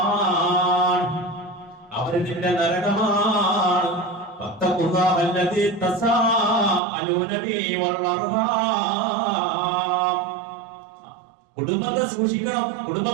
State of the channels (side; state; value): left; drops out; at 6.8 s